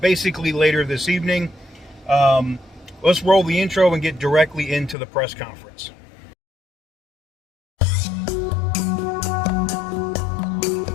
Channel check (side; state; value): right; drops out; at 5.0 s